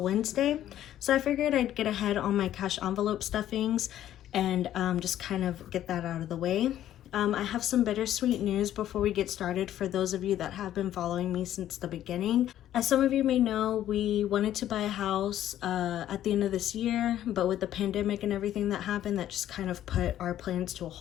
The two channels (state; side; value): quieter; right; 12.0 dB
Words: Wednesday. So I figured I'd get ahead on my cash envelope stuffings and just kind of get that out of the way. I have some bittersweet news before we get started for those of you that have been following me since the beginning. As some of you may know, we wanted to buy a house at the end of this year, but with the pandemic and everything that happened, that just kind of put our plans to a